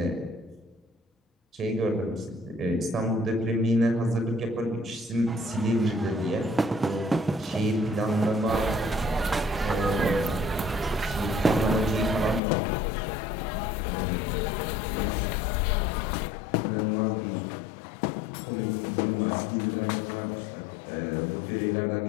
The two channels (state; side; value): drops out; right; at 12.4 s